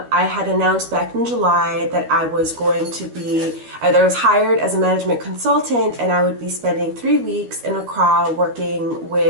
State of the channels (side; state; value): left; late; 13 ms